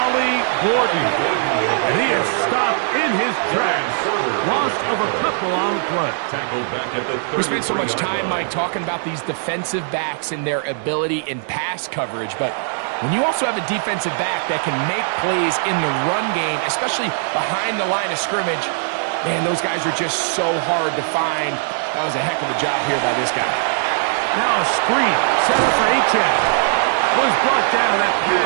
Gordon. And he is stopped in his tracks. Loss of a couple on the play. Tackled back at the We spent so much time, Mike, talking about these defensive backs and their ability in pass coverage, but when you also have a defensive back that can make plays in the run game, especially behind the line of scrimmage, man, those guys are just so hard to find. That was a heck of a job here by this guy. Now a screen set up for Achane. Was brought down. That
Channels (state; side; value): silent; left; 60 dB below the other